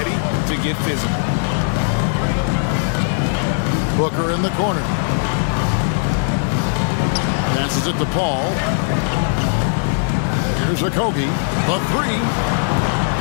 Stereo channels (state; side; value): silent; right; digital silence